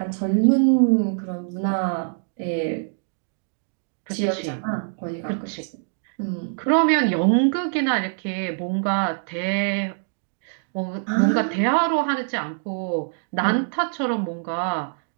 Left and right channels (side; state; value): left; silent; digital silence